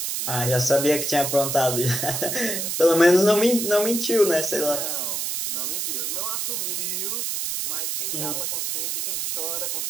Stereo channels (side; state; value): right; noise; hiss, 2 dB below the sound